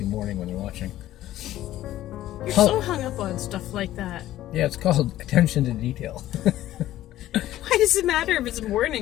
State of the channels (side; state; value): right; quieter; 14.0 dB